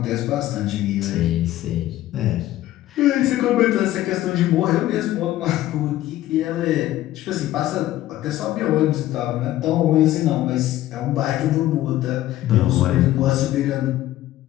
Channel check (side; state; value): right; quieter; 14.5 dB